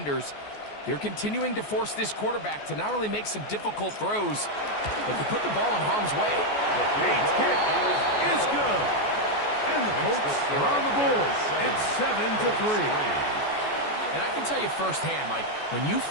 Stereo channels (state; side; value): late; right; 14 ms